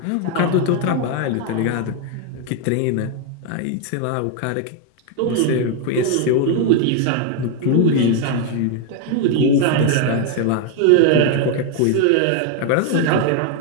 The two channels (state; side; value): different; both; correlation 0.01